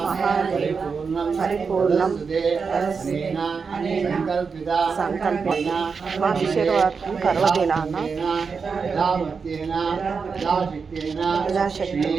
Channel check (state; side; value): quieter; left; 5.3 dB